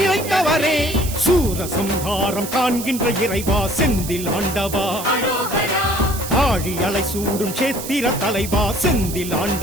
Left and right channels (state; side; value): noise; right; hiss, 9 dB below the sound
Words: சூர சம்ஹாரம் காண்கின்ற இறைவா செந்தில் ஆண்டவா அரோகரா ஆழி அலை சூடும் சேத்திர தலைவா செந்தில்